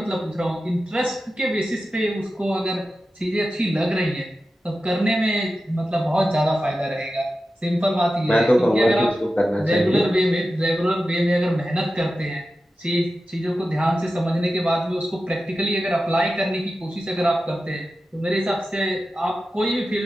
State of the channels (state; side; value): normal; both; correlation 0.93